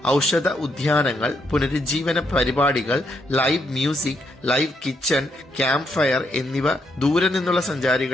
ഔഷധ ഉദ്യാനങ്ങൾ, പുനരുജ്ജീവന പരിപാടികൾ, live music, live kitchen, campfire എന്നിവ ദൂരെ നിന്നുള്ള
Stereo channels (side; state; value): both; normal; correlation 0.77